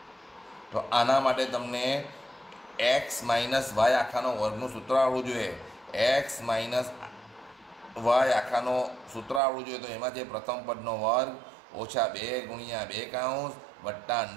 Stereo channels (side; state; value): left; drops out; at 9.4 s